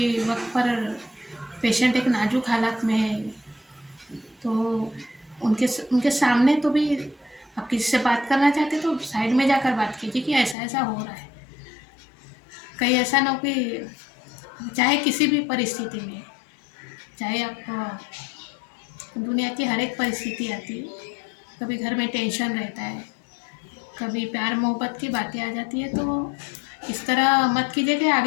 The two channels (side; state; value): right; drops out; at 10.6 s